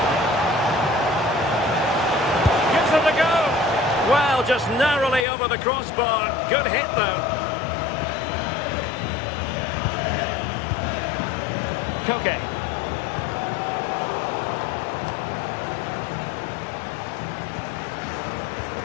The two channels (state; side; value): drops out; right; at 5.2 s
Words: Gives it a go. Well, just narrowly over the crossbar. Good hit, though. Koke.